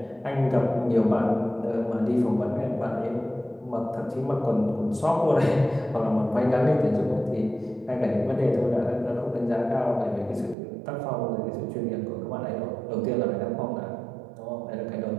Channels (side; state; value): left; drops out; at 10.6 s